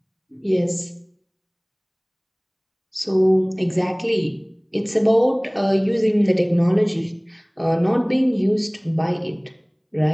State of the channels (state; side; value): identical; both; correlation 1.00